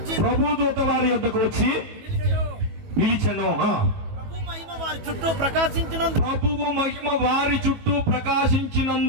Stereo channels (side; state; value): left; late; 18 ms